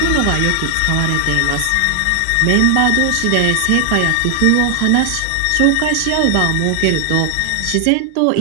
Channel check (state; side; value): different; both; correlation 0.00